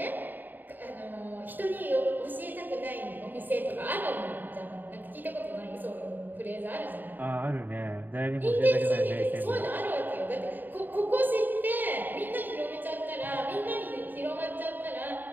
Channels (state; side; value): late; left; 0.089 ms